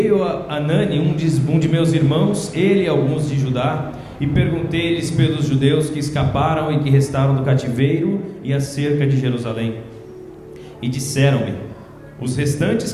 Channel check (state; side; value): identical; both; correlation 1.00